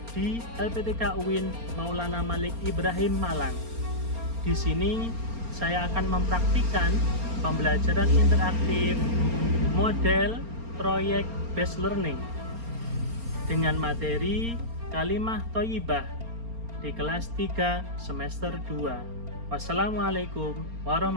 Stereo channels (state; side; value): late; left; 4.3 ms